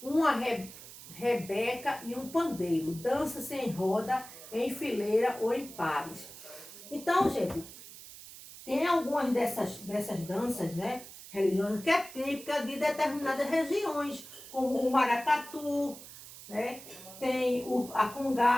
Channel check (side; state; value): right; noise; hiss, 16 dB below the sound